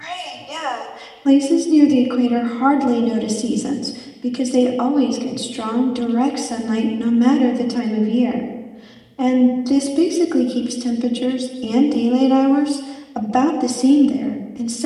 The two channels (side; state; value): both; identical; correlation 1.00